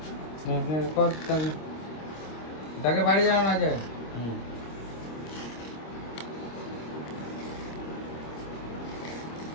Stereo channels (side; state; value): right; late; 26 ms